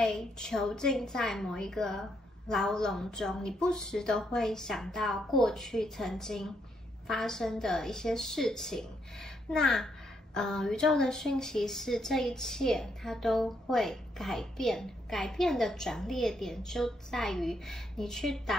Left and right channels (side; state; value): both; normal; correlation 0.76